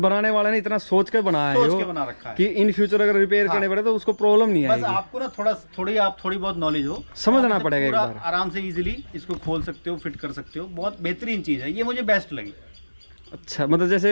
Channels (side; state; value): both; inverted; correlation -1.00